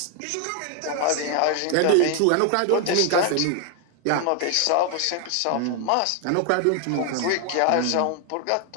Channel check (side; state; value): both; different; correlation 0.00